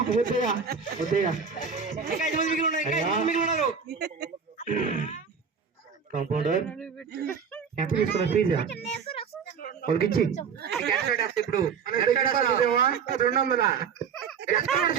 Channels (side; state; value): left; quieter; 6.4 dB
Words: వద్దయ్యా వద్దయ్యా. కాంపౌండర్ ఎంత తీసుకున్నా ఫీజా? వాళ్ళకి ఇచ్చి ఇప్పుడు 200